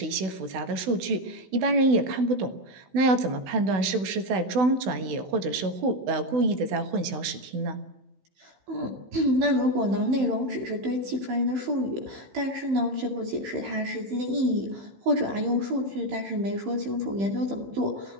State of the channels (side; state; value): left; late; 16 ms